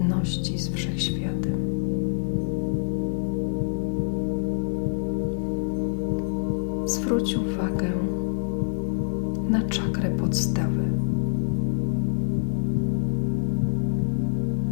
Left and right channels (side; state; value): right; silent; digital silence